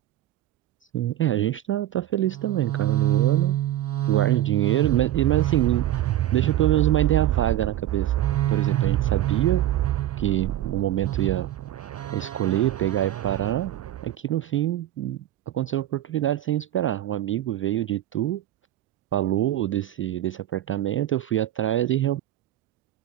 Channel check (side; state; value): left; quieter; 12.8 dB